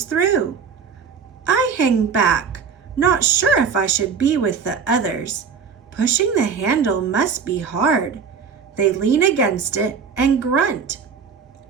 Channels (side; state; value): left; quieter; 6.2 dB